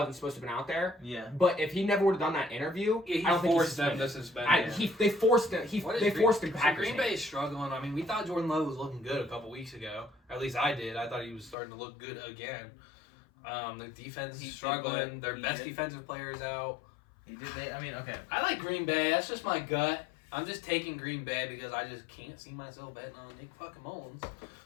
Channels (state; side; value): drops out; right; at 11.6 s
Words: supposed to have been out there. Yeah. But if he never would have done that interview, Yeah, he I don't think forced he's them to suspend him. They forced him. What is They forced him so back. Green Bay is struggling. I mean, we thought Jordan Love was looking good a couple weeks ago. At least I did. I thought he was starting to look good again. The defense He is did, struggling. but Their he best did. defensive players out. He did. I mean, okay. I like Green Bay. That's just my gut. I'm just taking Green Bay because I just can't see myself betting on Nick fucking Mullins.